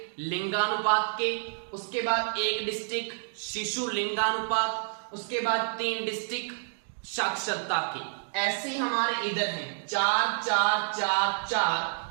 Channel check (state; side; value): silent; left; digital silence